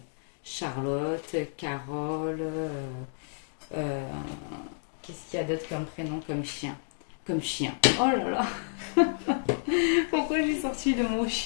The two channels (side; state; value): right; silent; digital silence